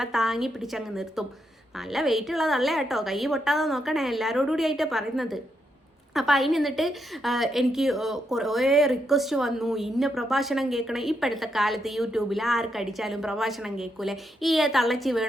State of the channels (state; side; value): normal; both; correlation 0.81